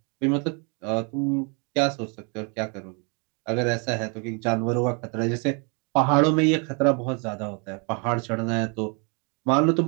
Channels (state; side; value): quieter; left; 34.9 dB